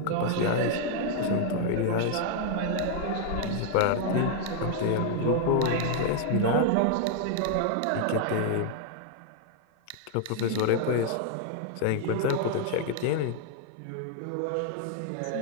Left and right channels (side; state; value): both; different; correlation 0.00